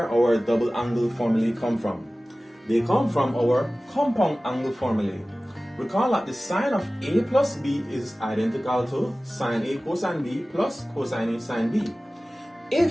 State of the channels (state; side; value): normal; both; correlation 0.97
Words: our double angle formulae come from. They come from our compound angle formulae. Recall that the sine of A plus B is identical to sine A cosine B plus cosine A sine B.